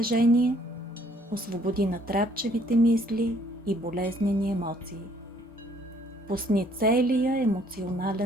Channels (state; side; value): normal; both; correlation 0.63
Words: Освободи натрапчевите мисли и болезнени емоции. Пусни целия